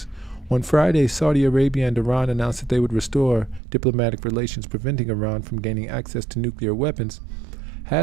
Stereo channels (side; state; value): left; drops out; at 3.6 s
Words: On Friday, Saudi Arabia and Iran announced that they would restore diplomatic relations, preventing Iran from gaining access to nuclear weapons